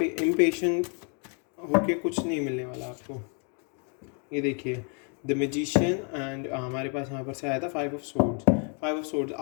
इम्पेशेंट होके कुछ नहीं मिलने वाला आपको। ये देखिए द मैजिशियन एंड हमारे पास यहाँ पर से आया था 5 ऑफ सोर्ड्स।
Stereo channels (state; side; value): quieter; right; 39.5 dB